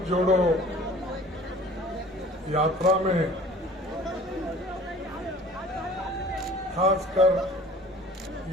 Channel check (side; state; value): both; normal; correlation 0.47